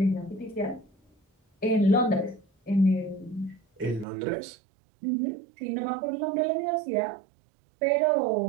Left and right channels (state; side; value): drops out; left; at 4.0 s